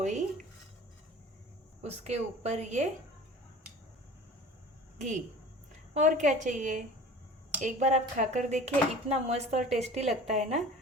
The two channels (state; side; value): normal; both; correlation 0.42